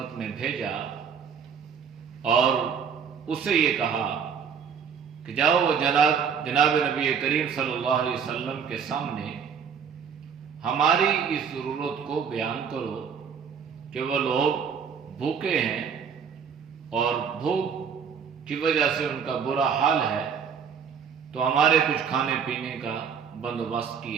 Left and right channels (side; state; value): left; quieter; 7.0 dB